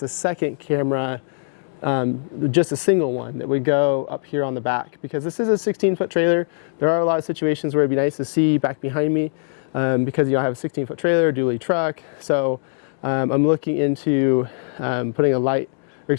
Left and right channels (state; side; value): silent; right; digital silence